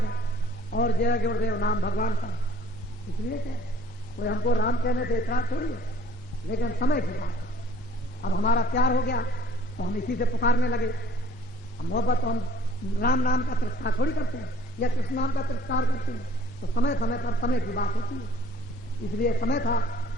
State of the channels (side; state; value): both; normal; correlation 0.55